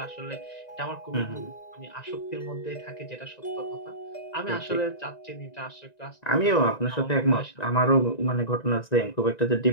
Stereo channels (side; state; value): right; late; 1.9 ms